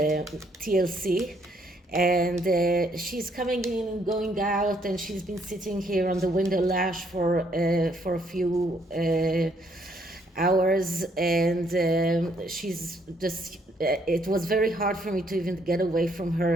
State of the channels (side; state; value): both; normal; correlation 0.69